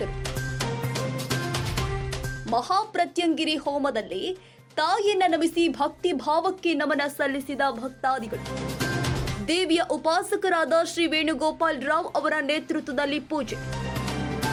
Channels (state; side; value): identical; both; correlation 1.00